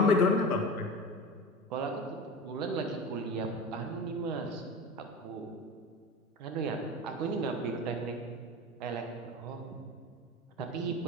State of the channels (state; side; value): normal; both; correlation 0.30